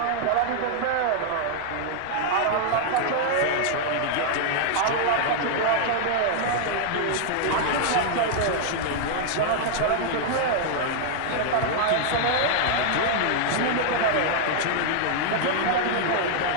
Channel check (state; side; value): different; both; correlation -0.01